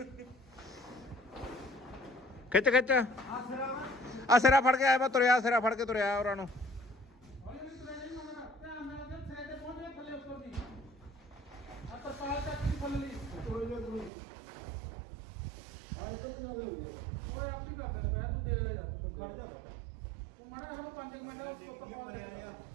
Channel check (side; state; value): left; drops out; at 14.1 s